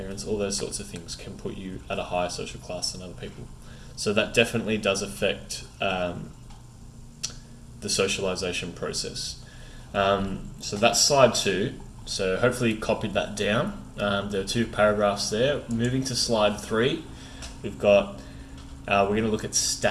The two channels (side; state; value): both; identical; correlation 1.00